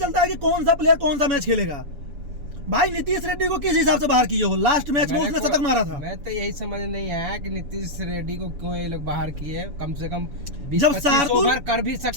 है कि कौन सा प्लेयर कौन सा मैच खेलेगा। भाई नीतीश रेड्डी को किस हिसाब से बाहर किए हो? लास्ट मैच में उसने शतक मारा था। मैं तो यही समझ नहीं आया कि नीतीश रेड्डी को क्यों ये लोग बाहर किए। कम से कम जब शार्दुल कर भी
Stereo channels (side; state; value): left; late; 7.0 ms